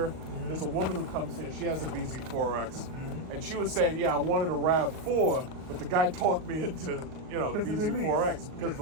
Mm-hmm. There's a woman who comes here. She has a BZ4X, and she was saying, "Yeah, I wanted a RAV4, but the guy talked me into the BZ4X because of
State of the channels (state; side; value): late; left; 38 ms